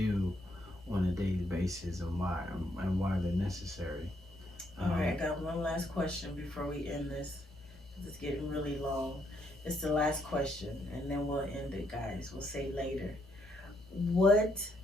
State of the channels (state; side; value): normal; both; correlation 0.74